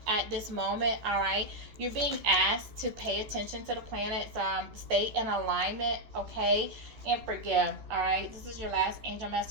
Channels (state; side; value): late; left; 13 ms